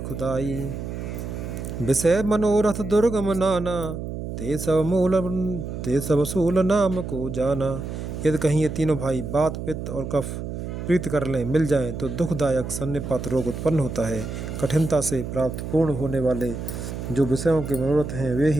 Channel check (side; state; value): right; noise; hum, 6 dB below the sound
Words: विषय मनोरथ दुर्गम नाना ते सब सूल नाम को जाना। यदि कहीं ये तीनों भाई बात पित्त और कफ प्रीत कर लें मिल जाएं तो दुखदायक सन्निपात रोग उत्पन्न होता है। कठिनता से प्राप्त पूर्ण होने वाले जो विषयों के मनोरथ हैं वे